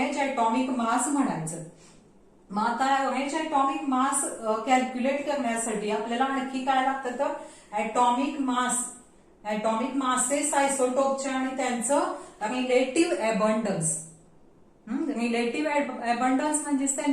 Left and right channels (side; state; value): both; identical; correlation 1.00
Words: ॲटॉमिक मास म्हणायचं. मग आता ऍव्हरेज ॲटॉमिक मास कॅल्क्युलेट करण्यासाठी आपल्याला आणखी काय लागतं तर ॲटॉमिक मासेस आयसोटोपच्या आणि त्यांचं रिलेटिव्ह अबंडन्स. रिलेटिव्ह अबंडन्स म्हणजेच